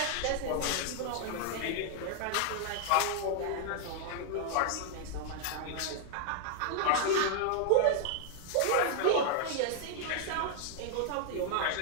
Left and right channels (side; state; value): both; different; correlation 0.00